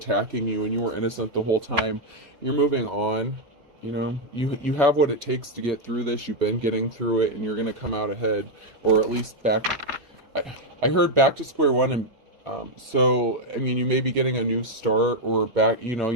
you, and you were innocent the whole time. You're moving on. You know, you have what it takes to get through this. You've been getting through it, and you're going to come out ahead, or at least back. I heard back to square one, and so I mean, you may be getting a new start, or back. You know,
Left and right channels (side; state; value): left; late; 2.5 ms